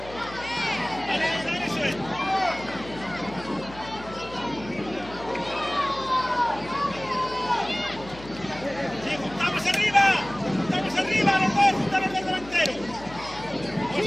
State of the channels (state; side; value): noise; left; hum, 17 dB below the sound